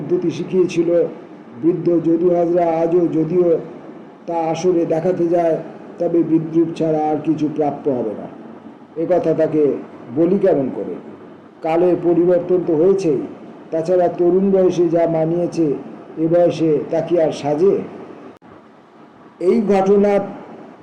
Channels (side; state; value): both; identical; correlation 1.00